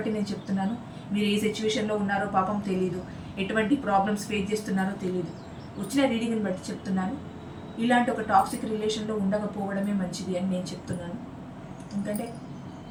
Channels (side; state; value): both; identical; correlation 1.00